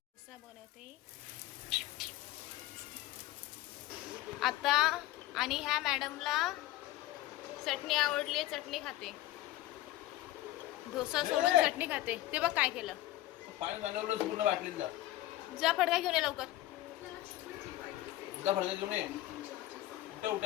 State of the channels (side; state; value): right; quieter; 15.8 dB